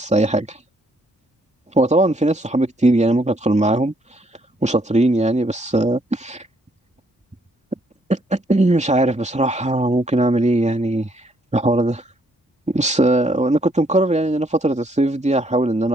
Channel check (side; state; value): both; normal; correlation 0.70